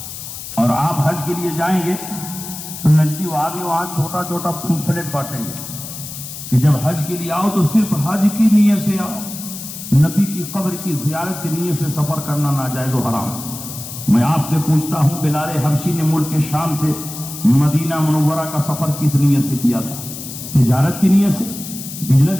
اور آپ حج کے لیے جائیں گے تو نجدی وادی وہاں چھوٹا چھوٹا پمفلٹ بانٹیں گے کہ جب حج کے لیے آؤ تو صرف حج کی نیت سے آؤ، نبی کی قبر کی زیارت کی نیت سے سفر کرنا ناجائز و حرام۔ میں آپ سے پوچھتا ہوں بلال حبشی نے ملک شام سے مدینہ منورہ کا سفر کس نیت سے کیا تھا؟ تجارت کی نیت سے،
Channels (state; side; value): noise; left; hiss, 10 dB below the sound